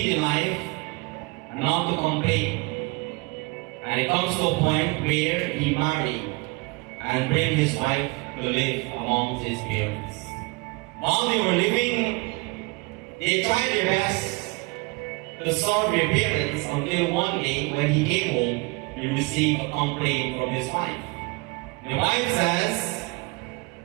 in life and not to complain. And it comes to a point where he married and bring his wife to live amongst his parents. While they were living They tried their best to serve their parents until one day when he came home, he received a complaint from his wife. The wife says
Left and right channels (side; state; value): left; quieter; 27.0 dB